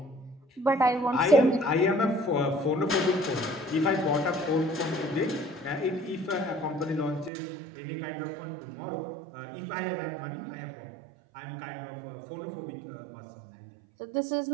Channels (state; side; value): drops out; left; at 7.3 s